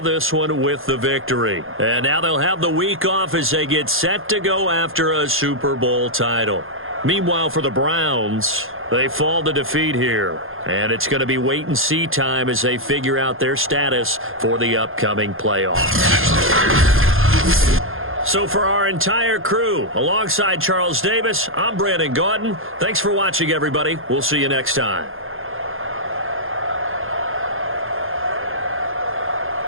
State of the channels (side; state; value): left; late; 0.60 ms